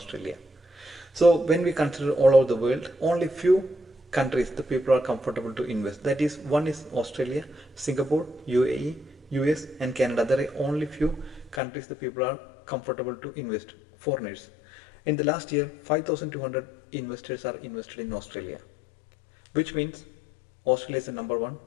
So when we consider all over the world, only few countries the people are comfortable to invest. That is, one is Australia, Singapore, UAE, US and Canada. There are only few countries the people are comfortable to invest, foreigners. In the last year, 5,200 investors are invested in Australia, which means Australia is the number one.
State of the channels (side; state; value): right; drops out; at 11.6 s